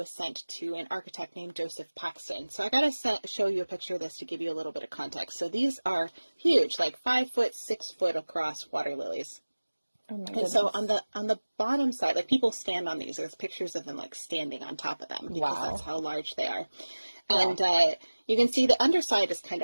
sent to an architect named Joseph Paxton. So I gotta show you a picture of this to give you a little bit of context. So these are huge, like 5 foot, 6 foot across water lilies. Oh my goodness. And so on the bottom side, like, people stand on these. There's pictures of them like standing on top of them, because that's how large they are. And you can see the underside is kind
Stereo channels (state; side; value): inverted; both; correlation -1.00